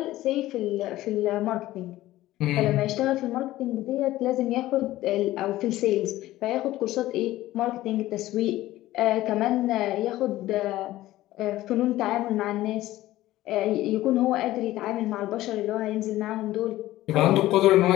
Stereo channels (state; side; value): quieter; right; 15.8 dB